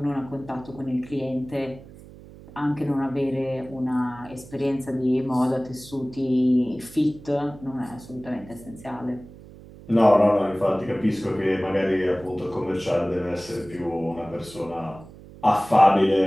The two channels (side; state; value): right; noise; hum, 19 dB below the sound